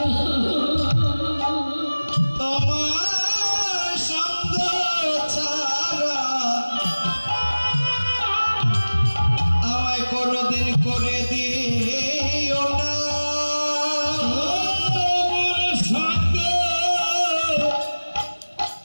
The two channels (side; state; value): both; inverted; correlation -1.00